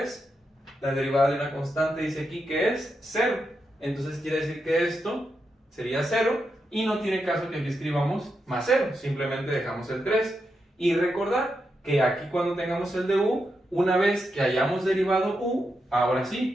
la derivada de una constante dice aquí que es 0. Entonces quiere decir que esto sería 0 y no tiene caso que aquí escribamos más 0, simplemente dejamos el 3. Y recordar que aquí cuando tengamos el de u, una vez que hayamos derivado u, ahora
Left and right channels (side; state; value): both; normal; correlation 0.85